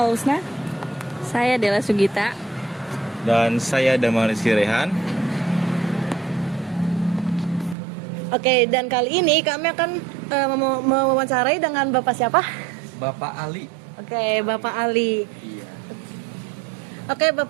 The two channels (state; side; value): drops out; left; at 7.8 s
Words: Saya Dela Sugita. Dan saya Damar Rizky Rehan. Oke, dan kali ini kami akan mewawancarai dengan Bapak siapa? Bapak Ali. Oke, Bapak Ali. Iya. Oke,